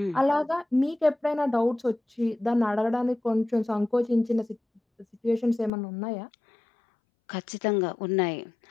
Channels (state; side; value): drops out; right; at 5.7 s